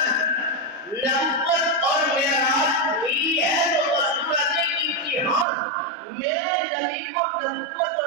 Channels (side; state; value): left; drops out; at 5.5 s